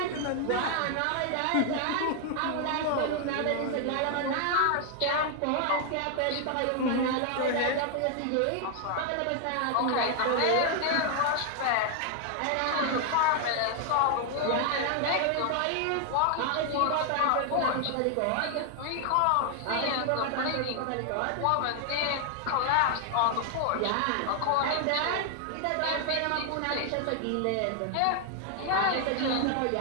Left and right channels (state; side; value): different; both; correlation 0.00